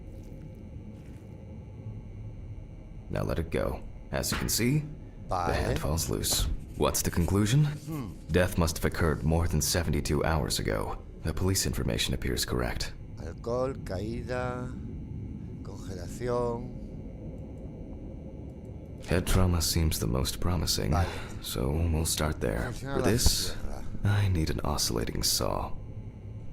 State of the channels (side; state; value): both; identical; correlation 1.00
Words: Now let it go. As you can see, the Vale. hand falls loose. What's the conclusion? Death must have occurred more than 72 hours ago. The police information appears correct. Alcohol, caída, congelación. Head trauma seems the most promising, Vale. so we'll start there. Funciona For la this, sierra. I need an oscillating saw.